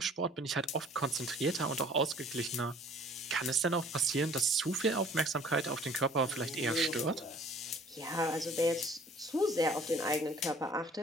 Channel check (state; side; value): normal; both; correlation 0.53